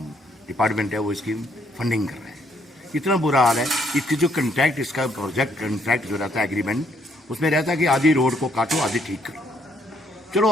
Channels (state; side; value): normal; both; correlation 0.69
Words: डिपार्टमेंट है वो इसकी फंडिंग कर रहे हैं। इतना बुरा हाल है। इसकी जो कंट्रैक्ट इसका प्रोजेक्ट कंट्रैक्ट जो रहता है एग्रीमेंट उसमें रहता है कि आधी रोड को काटो आधी ठीक करो। चलो